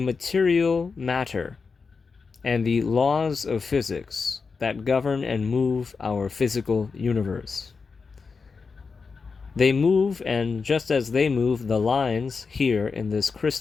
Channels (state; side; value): quieter; right; 4.9 dB